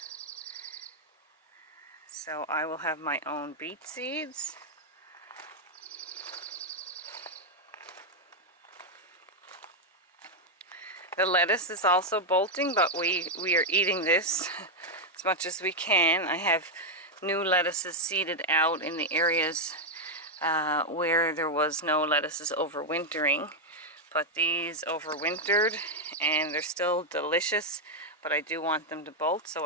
So I will have my own beet seeds. The lettuce is also bolting, but we are eating this as much as we can. I have new lettuces seeded out in the areas where there was no lettuces overwintering. But these overwintered and they're still delicious, but I do want them to bolt so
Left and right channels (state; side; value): normal; both; correlation 0.01